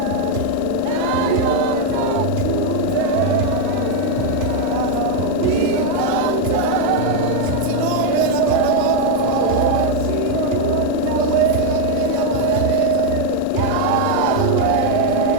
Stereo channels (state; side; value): normal; both; correlation 0.01